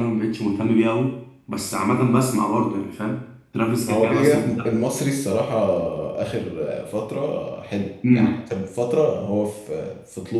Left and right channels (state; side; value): identical; both; correlation 1.00